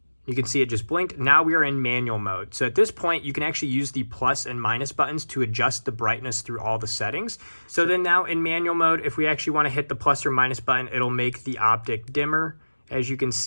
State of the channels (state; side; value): inverted; both; correlation -1.00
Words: You can see it just blinked. Now we are in manual mode. So at this point, you can actually use the plus and minus buttons to adjust the brightness through all the settings. So then now in manual mode, if we actually want to hit the plus or minus button, it'll make the optic dimmer, as you can